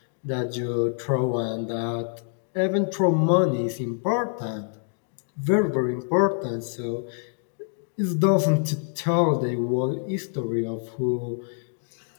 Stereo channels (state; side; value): silent; right; digital silence